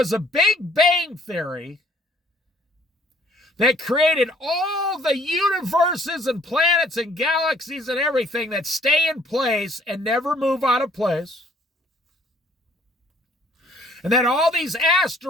a Big Bang Theory that created all the universes and planets and galaxies and everything that stay in place and never move out of place? And then all these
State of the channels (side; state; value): both; normal; correlation 0.60